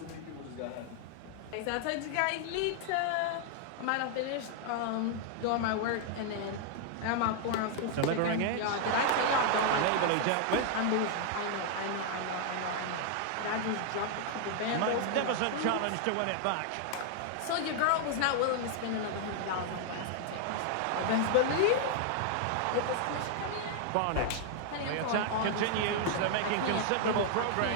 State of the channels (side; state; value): both; different; correlation 0.00